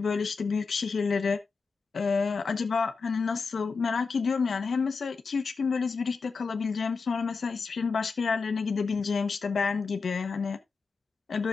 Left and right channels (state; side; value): quieter; right; 4.8 dB